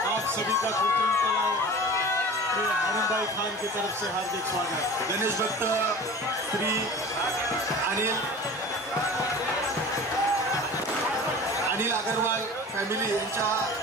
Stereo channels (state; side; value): normal; both; correlation 0.38